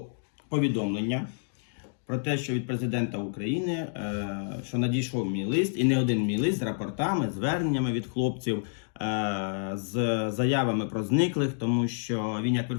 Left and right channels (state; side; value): silent; right; digital silence